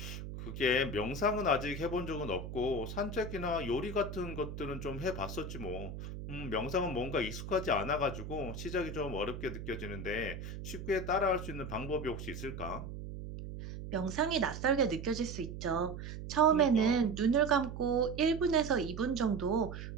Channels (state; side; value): noise; right; hum, 8 dB below the sound